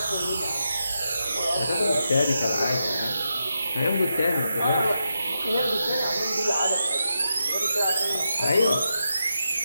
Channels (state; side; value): inverted; both; correlation -0.86